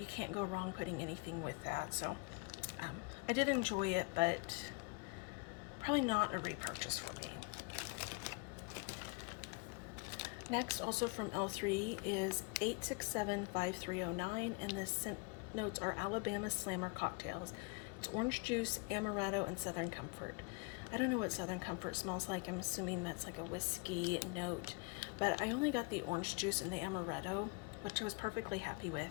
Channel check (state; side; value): quieter; right; 29.8 dB